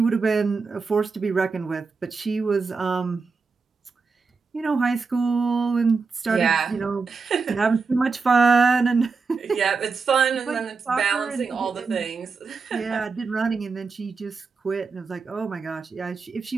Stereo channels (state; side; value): quieter; left; 4.7 dB